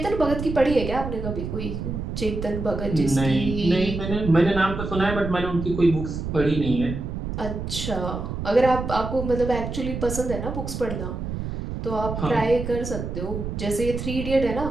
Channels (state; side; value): noise; right; rumble, 5 dB below the sound